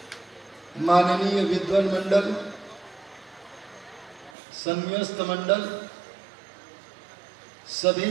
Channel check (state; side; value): drops out; left; at 4.3 s